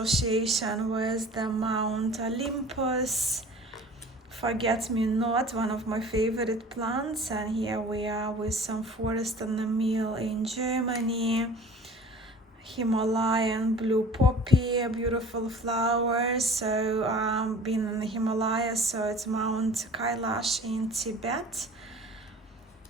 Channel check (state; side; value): normal; both; correlation 0.44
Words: with the Mount Olympus. Forget-me-not, one of my favorite plants, and here we are with some forest and the mill in Germany. Himalayan blue poppy, a beautiful flower. So been in the Himalayas, so it's Mount Kailash in Tibet.